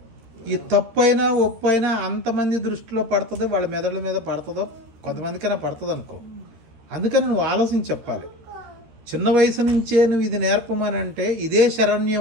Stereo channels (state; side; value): late; left; 13 ms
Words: ఈ తప్పైనా ఒప్పైనా అంతమంది దృష్టిలో పడుతుందో, వాళ్ళ మెదడుల మీద పడుతుందో, కొంతమందికైనా పడుతుంది అనుకో. అందుకని నువ్వు ఆలోచించి చెప్పాలి. చిన్న వయసు నుంచే నువ్వు ఇది నేర్పమని అంటే ఇదే